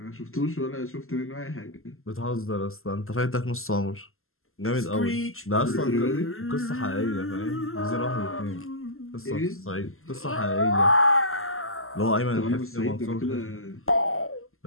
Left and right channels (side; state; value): right; late; 0.62 ms